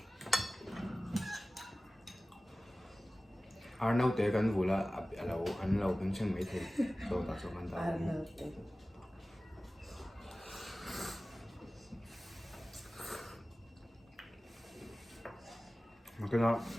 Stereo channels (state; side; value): normal; both; correlation 0.97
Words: Arnaud te kan vula alo an lo kan chen mai the to ta so kan ta mà cái nó